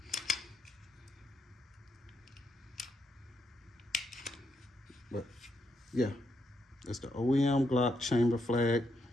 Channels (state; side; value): normal; both; correlation 0.80